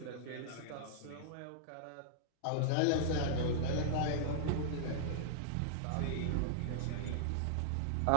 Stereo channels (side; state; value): both; different; correlation -0.01